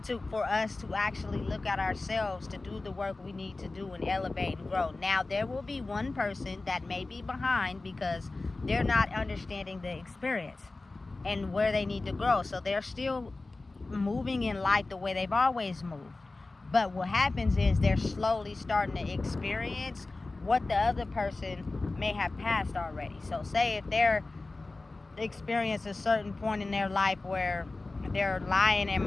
for us to actually look at ourselves, to do the work we need to do and elevate and grow. Now, there will be one person that may be behind because they're not understanding the experience and where they need to grow. So they're still moving in life the way they've always moved. But what happens is they're slowly starting to experience what the other person may have passed already. So say if they're experience a certain point in their life where they're lying and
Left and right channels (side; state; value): right; quieter; 3.3 dB